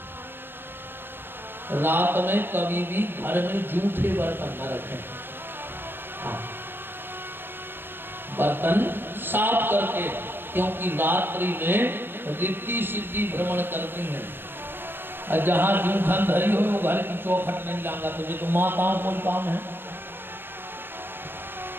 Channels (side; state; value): left; late; 0.10 ms